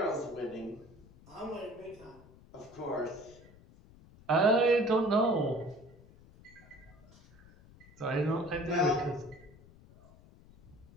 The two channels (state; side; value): noise; left; rumble, 23 dB below the sound